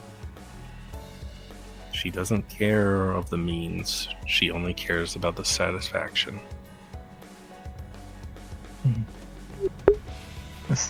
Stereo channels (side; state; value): both; identical; correlation 1.00